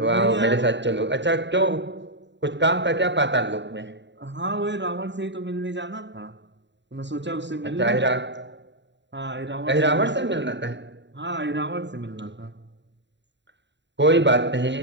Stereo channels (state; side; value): late; left; 0.52 ms